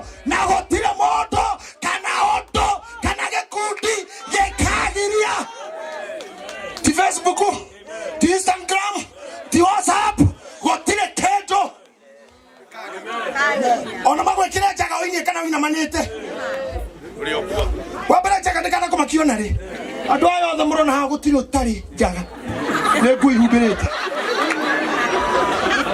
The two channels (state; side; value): identical; both; correlation 1.00